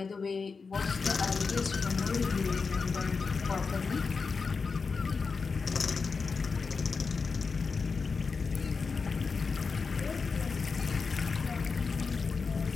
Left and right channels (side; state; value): right; quieter; 4.9 dB